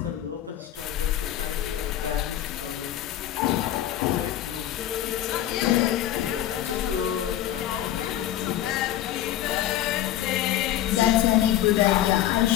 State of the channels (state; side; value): quieter; right; 12.4 dB